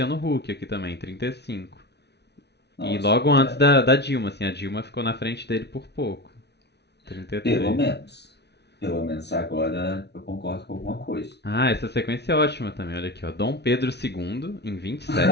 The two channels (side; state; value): right; late; 0.49 ms